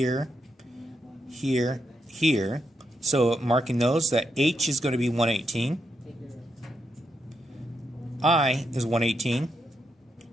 here, here. So marking those, that H is going to be 118. I is 118.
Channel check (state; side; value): normal; both; correlation 0.82